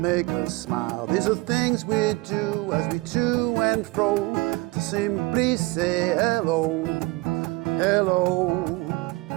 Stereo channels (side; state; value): left; quieter; 23.0 dB